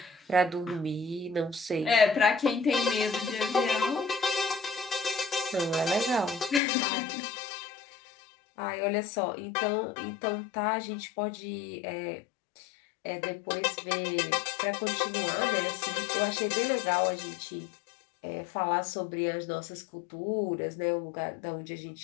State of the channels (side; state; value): right; drops out; at 6.6 s